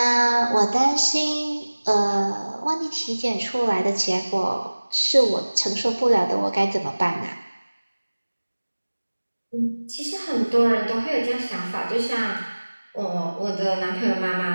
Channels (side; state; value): both; inverted; correlation -1.00